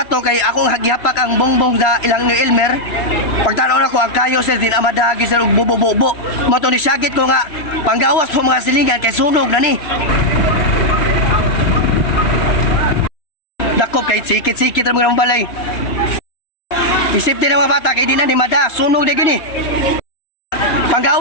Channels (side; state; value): right; late; 3.0 ms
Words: kay akong hagihapak ang bongbong sa ilang ni Elmer. Pagtanaw na ko ang kayo sir din amadagi sir og bubo-bubo. Mo to ni sagit ko nga panggawas mo mga silingan kay sunog na ni. Dakop kay sikit-sikit ra mga balay. Isip din ang mga bata kay di na ni mada sunog na gini.